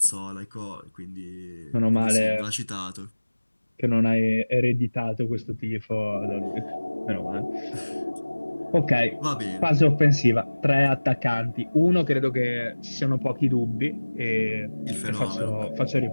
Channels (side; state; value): both; inverted; correlation -1.00